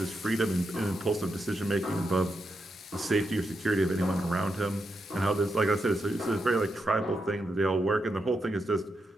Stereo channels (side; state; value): both; normal; correlation 0.84